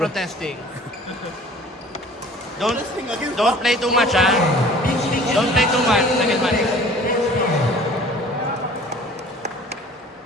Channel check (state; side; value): normal; both; correlation 0.48